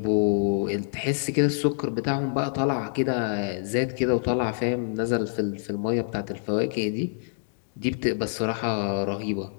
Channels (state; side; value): silent; right; digital silence